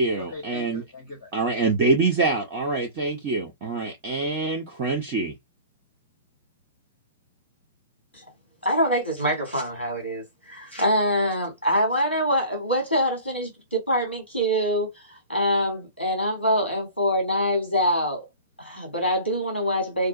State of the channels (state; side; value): inverted; both; correlation -0.42